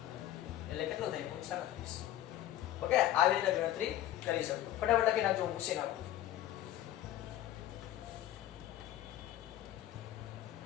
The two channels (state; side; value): quieter; right; 13.2 dB